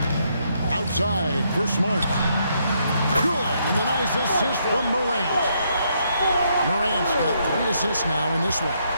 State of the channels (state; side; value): inverted; both; correlation -0.75